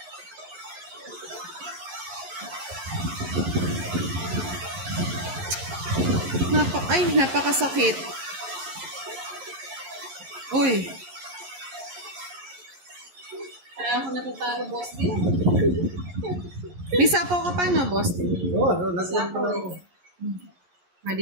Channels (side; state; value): left; late; 11 ms